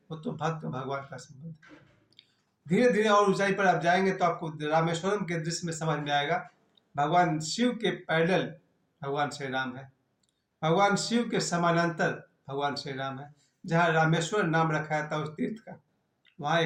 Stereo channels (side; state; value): both; identical; correlation 1.00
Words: वो तो भक्त भगवान का संबंध है। धीरे धीरे और ऊंचाई पर आप जाएंगे तो आपको रामेश्वरम के दृश्य में समझ में आएगा, भगवान शिव के पैरेलल भगवान श्री राम है, भगवान शिव के समानांतर भगवान श्री राम है। जहाँ रामेश्वर नाम रखा जाता है उस तीर्थ का, वहाँ